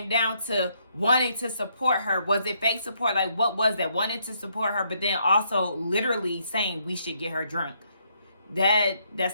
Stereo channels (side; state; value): both; inverted; correlation -0.73